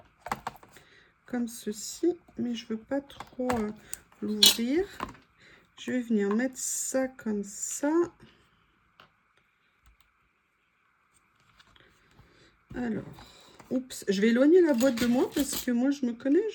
comme ceci, mais je veux pas trop l'ouvrir. Je vais venir mettre ça comme ça. Alors, oups, je vais éloigner la boîte de moi parce que moi je me connais,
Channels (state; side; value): identical; both; correlation 1.00